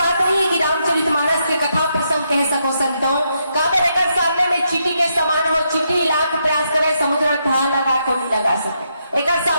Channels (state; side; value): inverted; both; correlation -0.80